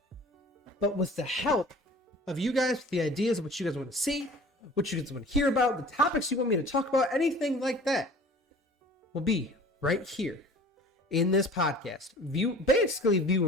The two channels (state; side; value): normal; both; correlation 0.45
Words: But with the help of you guys, with the ideas of what you guys want to see, what you guys want to hear about, the topics you want me to talk about, anything like that will be right here in this podcast.